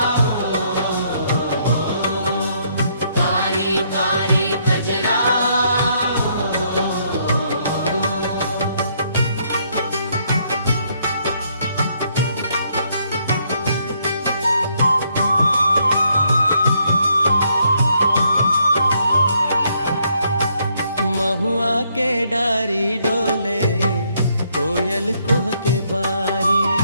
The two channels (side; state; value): both; inverted; correlation -0.71